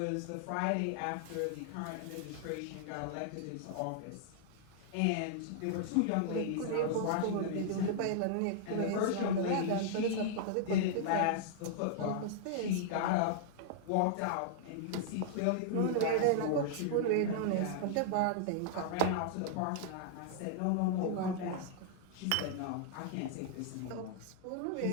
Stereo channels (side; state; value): both; different; correlation -0.01